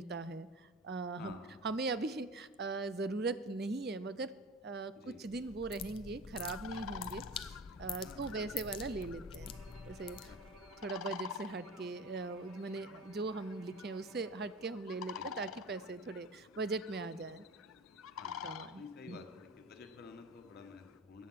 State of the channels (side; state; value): both; normal; correlation 0.34